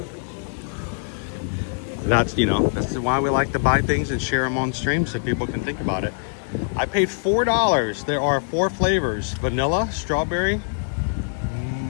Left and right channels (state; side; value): silent; right; digital silence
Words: that's, you know, that's why we like to buy things and share them on stream so people can think about it. I paid $4. There are 4 flavors: vanilla, strawberry,